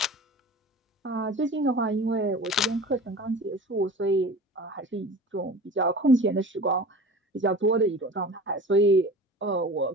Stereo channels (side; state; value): both; normal; correlation 0.38